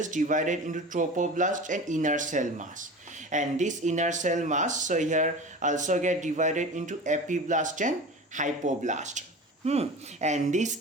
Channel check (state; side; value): normal; both; correlation 0.34